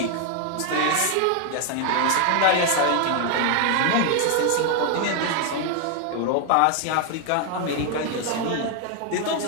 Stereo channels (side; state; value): both; different; correlation 0.01